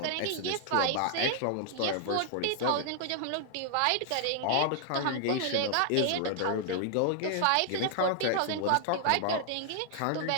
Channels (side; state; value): both; different; correlation -0.01